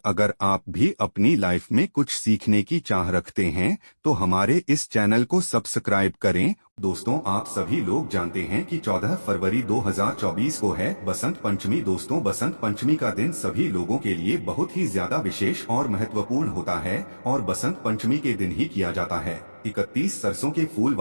अगर आप भी अपनी लाइफ में कुछ सीखने की चाह रखते हैं तो हमारे इस चैनल को सब्सक्राइब करें। दोस्तों, आप सभी लोग जानते हैं कि 14 फरवरी 2024 को है बसंत पंचमी। दोस्तों, बसंत पंचमी का दिन सभी लोगों के लिए बहुत ही ज्यादा विशेष और महत्वपूर्ण होता है और बसंत पंचमी के दिन ही किया जाता है 31 सरसों के फूल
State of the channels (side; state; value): both; inverted; correlation -1.00